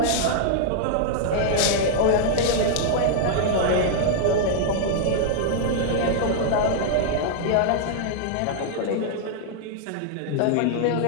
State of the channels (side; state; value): both; different; correlation -0.01